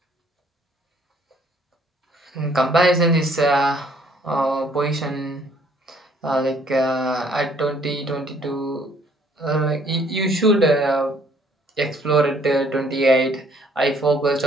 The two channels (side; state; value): both; normal; correlation 0.62